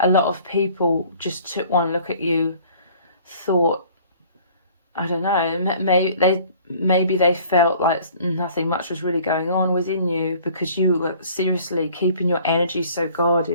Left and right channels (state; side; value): inverted; both; correlation -0.52